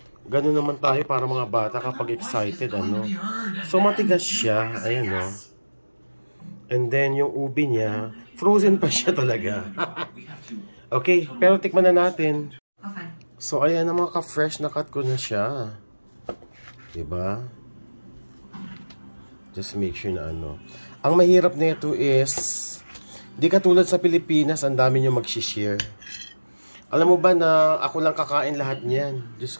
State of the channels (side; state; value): both; inverted; correlation -1.00